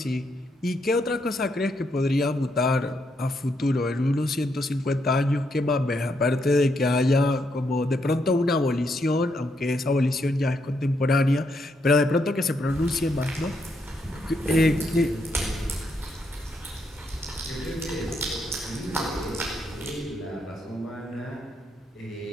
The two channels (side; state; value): both; normal; correlation 0.78